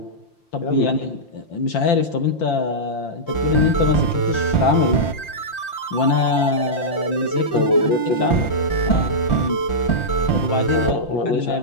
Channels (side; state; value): right; late; 5.8 ms